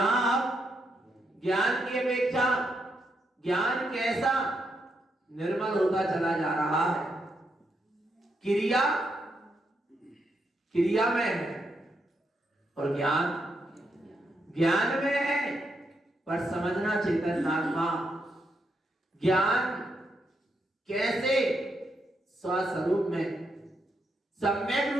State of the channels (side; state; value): both; normal; correlation 0.80